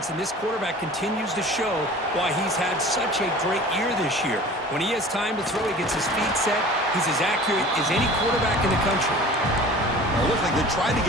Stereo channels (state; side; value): normal; both; correlation 0.42